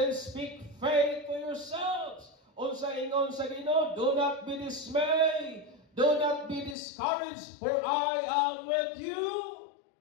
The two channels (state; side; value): drops out; right; at 6.8 s